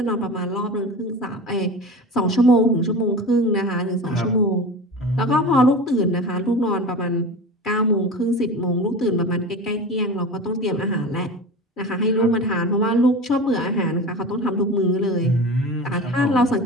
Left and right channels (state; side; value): normal; both; correlation 0.31